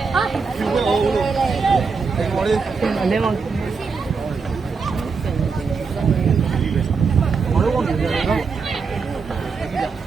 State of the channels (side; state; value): left; quieter; 5.0 dB